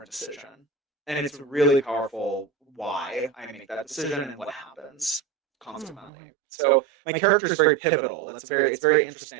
decision. And it's really powerful why I make that decision and what happens consequently. So my character is very pivotal. It's very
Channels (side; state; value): left; drops out; at 6.1 s